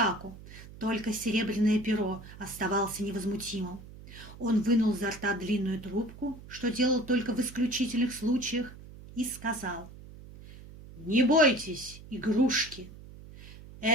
Только Серебряное Перо оставался невозмутимым. Он вынул изо рта длинную трубку, что делал только в исключительных случаях, и сказал: «Не бойтесь, игрушки!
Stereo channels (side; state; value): right; noise; hum, 17 dB below the sound